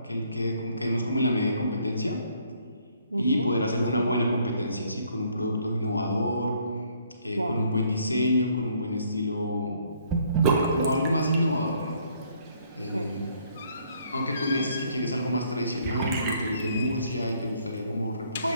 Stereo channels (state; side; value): inverted; both; correlation -0.66